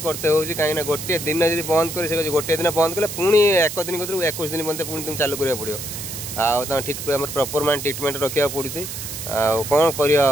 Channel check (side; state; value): right; noise; hiss, 8 dB below the sound